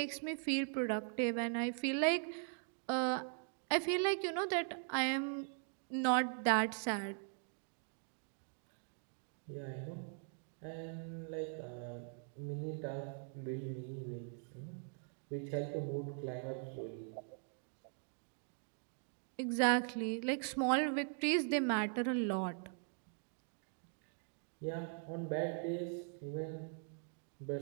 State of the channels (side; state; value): left; silent; 50 dB below the other